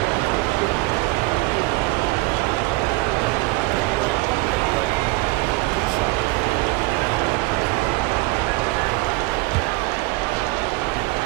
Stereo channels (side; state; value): left; quieter; 22.0 dB